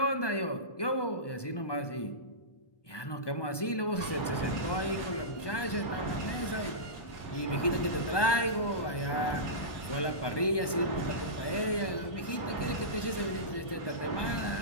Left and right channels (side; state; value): right; late; 1.2 ms